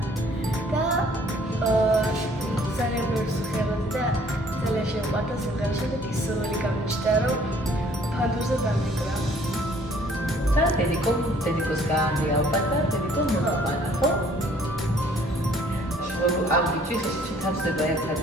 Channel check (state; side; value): normal; both; correlation 0.59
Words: და ძალიან ბევრი სიმღერა და ძალიან შემყვარდა სიმღერა. შემდეგ ის სრული გამიჩნდა, რომ ფანდურზე დამიკრა. და დედიკოს გაანდი ალბათ და დედიკო მოყვანა, ხო? ამ ბიჭის შეთავსდება ერთად